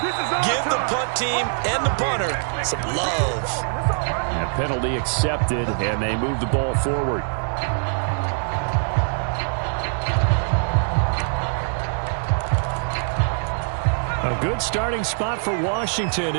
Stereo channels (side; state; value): left; silent; 63 dB below the other